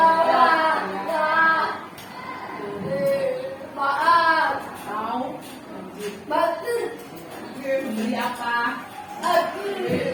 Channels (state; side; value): identical; both; correlation 1.00